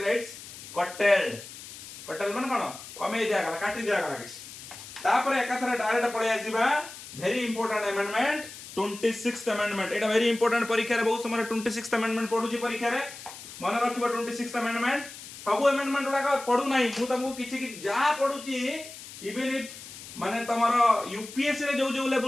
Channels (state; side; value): noise; left; hiss, 14 dB below the sound